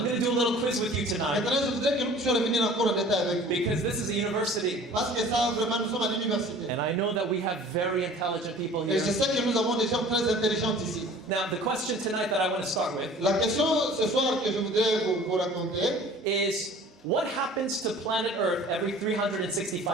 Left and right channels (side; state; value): both; normal; correlation 0.47